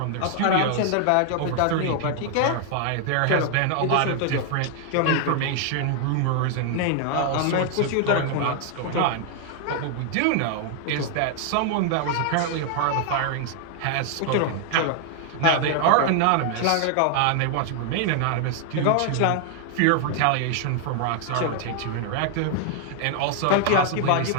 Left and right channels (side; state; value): both; different; correlation 0.00